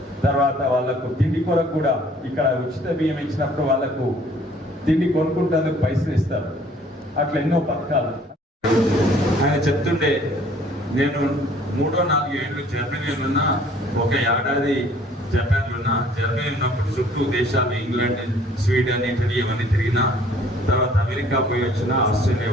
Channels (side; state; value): both; normal; correlation 0.56